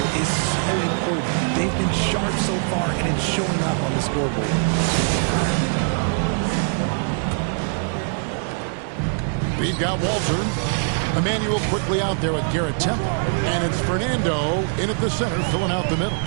is so important. They've been sharp so far, and it's showing up on the scoreboard. We've got Walter. Emmanuel quickly out there with Garrett Temple. And it's Fernando in at the center, filling out the middle.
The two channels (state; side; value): silent; left; 61 dB below the other